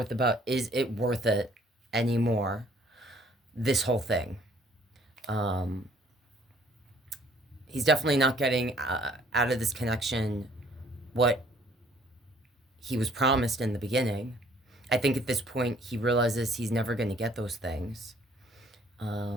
about, is it worth it anymore, this whole thing. He's definitely not getting out of this connection what he was promised in the beginning. I think at this point he realizes he's never going to get those things.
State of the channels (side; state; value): both; normal; correlation 0.59